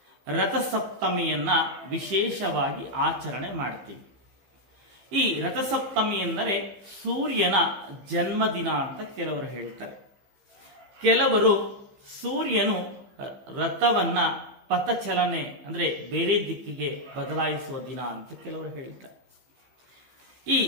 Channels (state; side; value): late; left; 15 ms